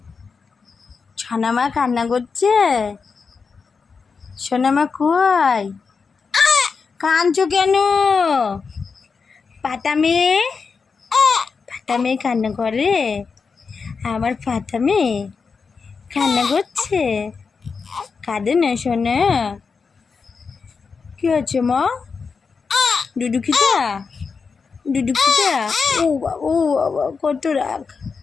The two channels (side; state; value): right; quieter; 5.2 dB